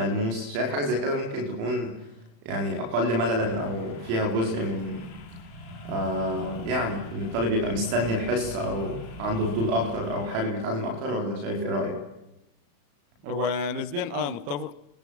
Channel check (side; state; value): left; late; 35 ms